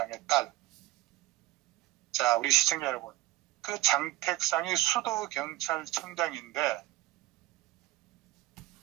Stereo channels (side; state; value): left; quieter; 17.4 dB